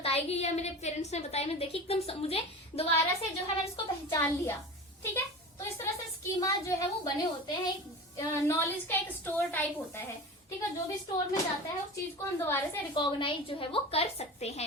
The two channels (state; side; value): normal; both; correlation 0.32